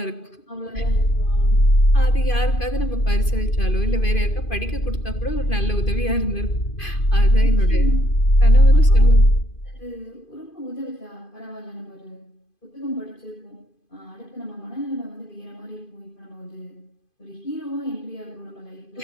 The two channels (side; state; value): right; late; 2.5 ms